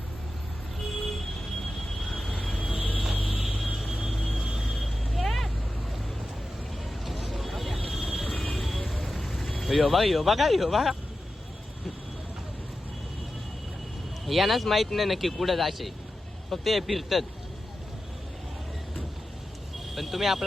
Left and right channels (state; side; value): normal; both; correlation 0.92